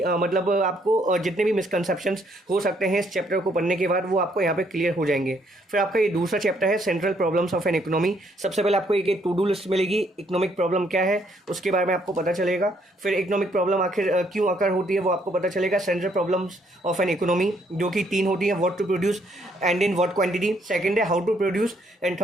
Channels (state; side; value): normal; both; correlation 0.69